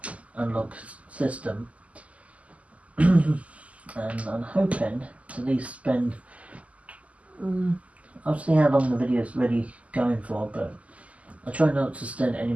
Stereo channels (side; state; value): left; late; 0.068 ms